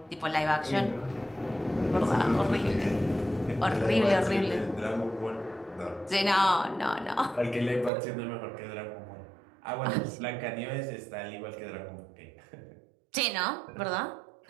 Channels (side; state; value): left; drops out; at 7.9 s